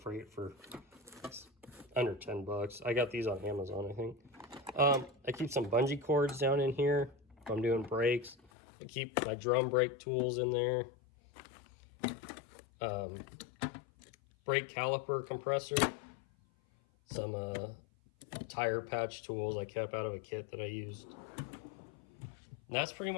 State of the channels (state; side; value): drops out; right; at 8.5 s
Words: for under 10 bucks. I got these on Amazon, I think. I keep some bungee cords down in here if I'm doing brakes. I keep my drum brake tools in there. Brake caliper compressor. Some tire patch tools I kept out of a kit that I used. And that's pretty